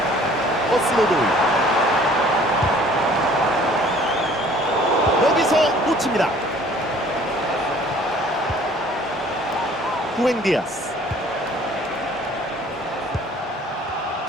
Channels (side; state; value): both; normal; correlation 0.53